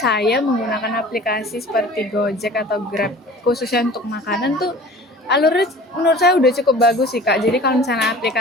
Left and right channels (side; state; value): both; normal; correlation 0.44